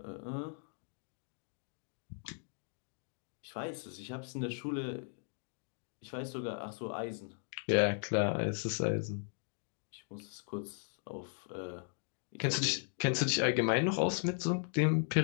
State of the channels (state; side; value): silent; right; 53 dB below the other